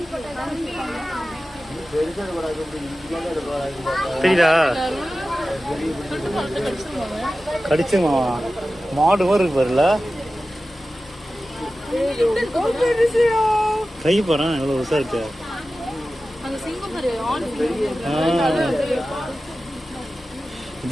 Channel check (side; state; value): both; normal; correlation 0.95